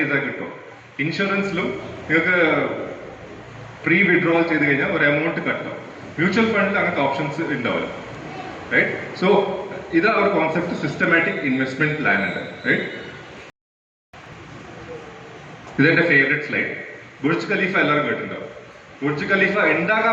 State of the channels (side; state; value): both; identical; correlation 1.00